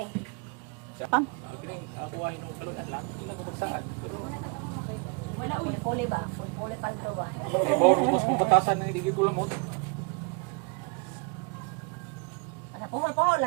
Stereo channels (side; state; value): left; quieter; 33.7 dB